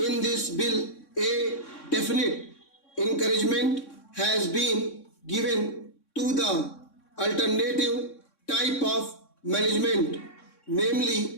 this bill, a definite encouragement has been given to the alternative type of management,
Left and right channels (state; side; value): late; right; 3.6 ms